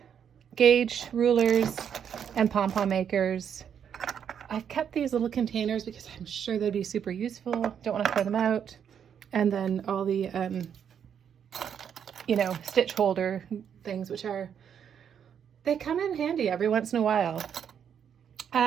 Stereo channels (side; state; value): left; quieter; 8.2 dB